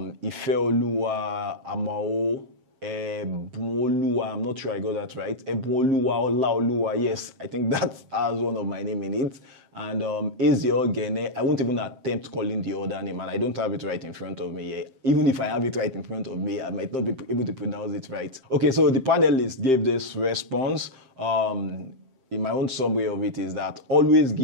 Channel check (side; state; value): left; late; 7.6 ms